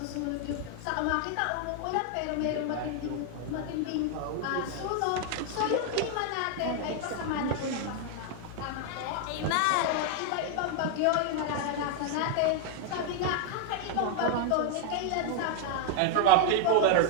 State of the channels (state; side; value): different; both; correlation 0.00